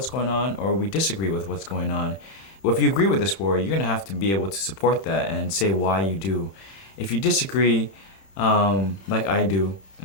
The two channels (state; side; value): late; right; 31 ms